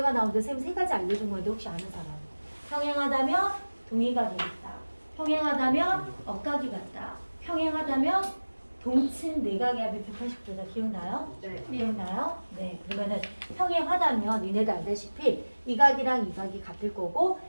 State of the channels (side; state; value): both; inverted; correlation -1.00